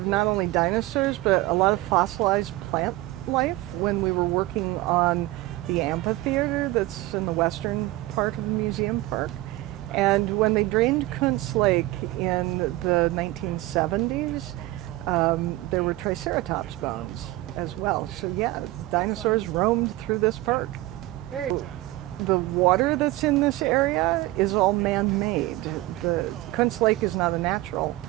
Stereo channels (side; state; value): left; quieter; 18.2 dB